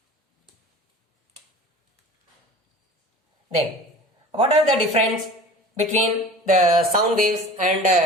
Then, what are the difference between the sound waves and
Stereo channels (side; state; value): both; normal; correlation 0.40